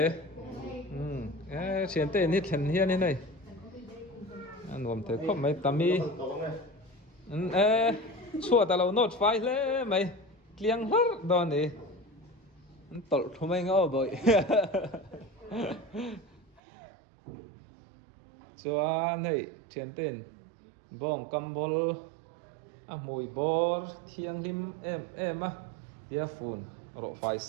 chiến tên hết thần hiên thế này anh gồm thấy không mấy tầm mi chua ta lâu nốt phai lẽ mày liang hết đó này tol không anh ngô bội chua này chiến tên bong cầm bol mùi bor thiang lim em tia phun rộ phai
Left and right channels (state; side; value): drops out; left; at 16.6 s